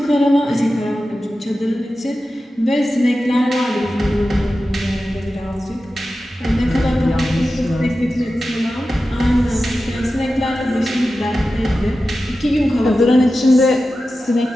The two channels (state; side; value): normal; both; correlation 0.93